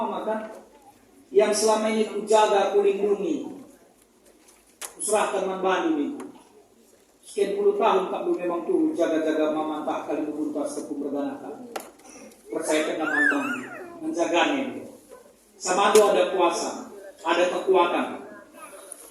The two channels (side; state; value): both; identical; correlation 1.00